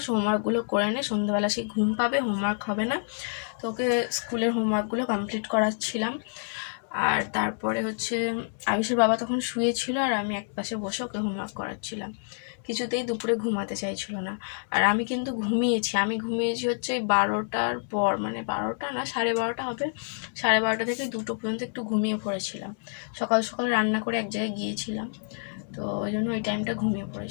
হোমওয়ার্কগুলো করে নে, সন্ধ্যাবেলা সে ঘুম পাবে, হোমওয়ার্ক হবে না। তো ওকে স্কুলের হোমওয়ার্কগুলো কমপ্লিট করাচ্ছিলাম। আর তারপরে আয়ুষের বাবা তখন শুয়েছিল, আর আমি একপাশে বসে ওকে হোমওয়ার্ক করাচ্ছিলাম। কিছুতেই দুপুরে ঘুমাতে চাইছিল না। আর আমি কিন্তু ঘুমিয়েছি ওই 12টার পর, মানে 12টা না, 12:30 হবে। 12:30 থেকে 2টো পর্যন্ত একটু ঘুমিয়ে পড়েছিলাম। সকাল সকাল রান্না করে এক জায়গায় গিয়েছিলাম, তো ওই জন্য ওই টাইমটা ঘুমিয়ে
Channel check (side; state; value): right; silent; 60 dB below the other